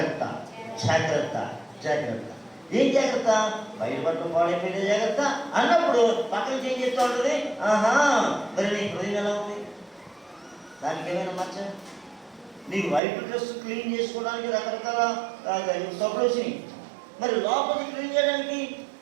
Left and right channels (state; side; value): drops out; left; at 13.0 s